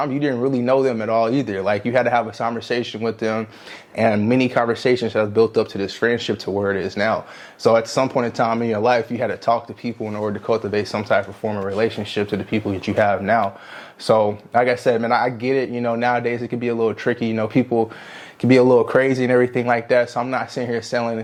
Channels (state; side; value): identical; both; correlation 1.00